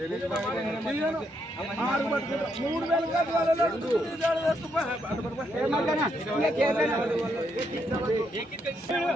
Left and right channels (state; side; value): normal; both; correlation 0.77